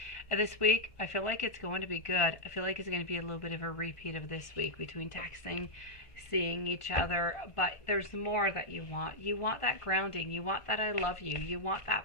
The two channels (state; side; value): late; right; 1.6 ms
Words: this week, I feel like it's going to be good. I feel like it's going to be a little bit of a repeat of this week between texting, seeing each other. But there's more that you want. You want that grounding. You want that I love you. You want